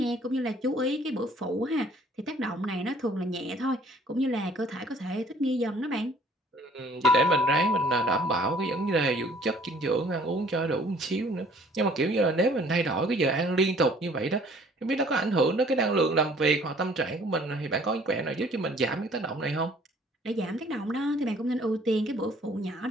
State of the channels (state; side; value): normal; both; correlation 0.56